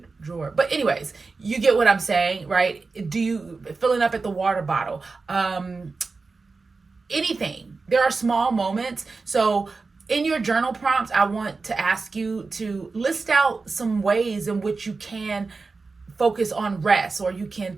drawer. But anyways, you get what I'm saying, right? Do you filling up at the water bottle? Anything. There are small moments. So in your journal prompts, I want to ask you to list out some ways in which you can focus on rest, or you can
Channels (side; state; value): left; quieter; 4.1 dB